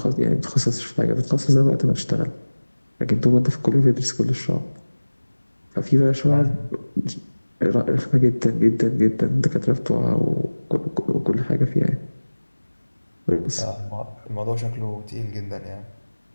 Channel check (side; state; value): both; inverted; correlation -1.00